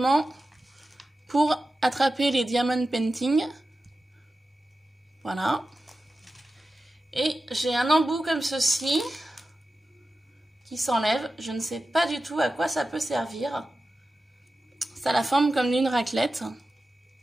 pour attraper les diamond painting. Voilà. Et j'ai un embout comme ceci qui s'enlève. Je ne sais pas du tout à quoi ça peut servir. Ça a la forme comme d'une raclette.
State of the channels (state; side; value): normal; both; correlation 0.93